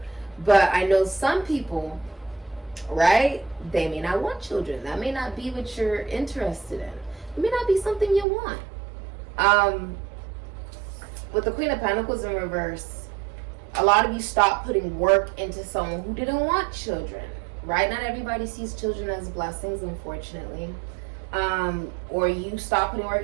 But I know some people, right? They may not want children. That may not be what you're interested in. It may not be something you want. With the Queen of Pentacles in reverse, a lot of you stop putting work into someone who didn't want children, right? Not everybody sees children as blessings, unfortunately. Or you stop putting work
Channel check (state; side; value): drops out; left; at 8.2 s